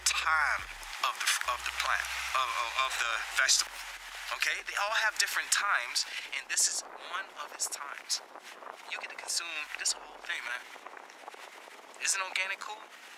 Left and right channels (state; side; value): identical; both; correlation 1.00